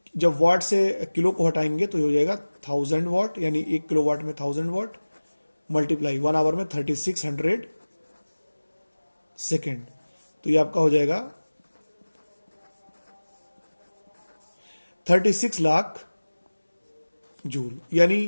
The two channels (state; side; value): inverted; both; correlation -1.00